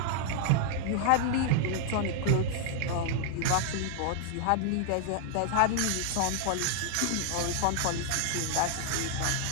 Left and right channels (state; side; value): different; both; correlation 0.00